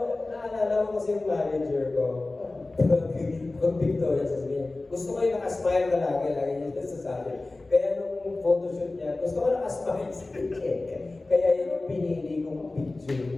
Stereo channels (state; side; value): quieter; right; 3.1 dB